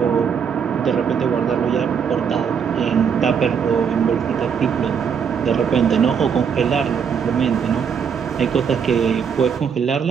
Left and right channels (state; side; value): quieter; left; 7.0 dB